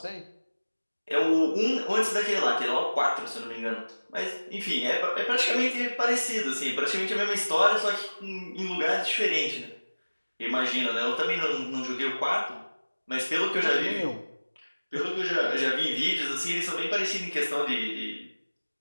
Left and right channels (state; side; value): inverted; both; correlation -1.00